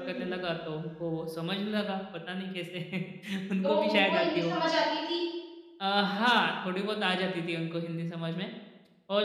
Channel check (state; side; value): identical; both; correlation 1.00